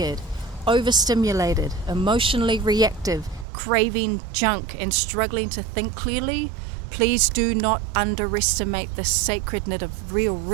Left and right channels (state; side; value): drops out; left; at 3.5 s